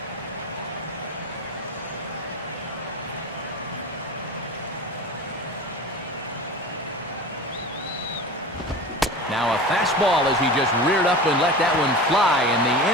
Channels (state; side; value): normal; both; correlation 0.32